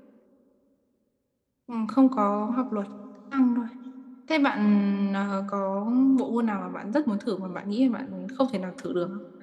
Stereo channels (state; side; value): identical; both; correlation 1.00